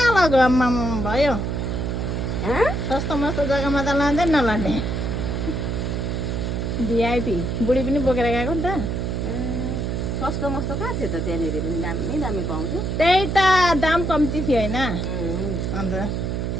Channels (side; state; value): right; noise; hum, 1 dB below the sound